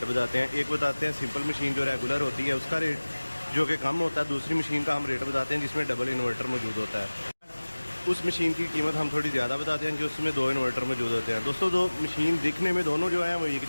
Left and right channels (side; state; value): both; inverted; correlation -1.00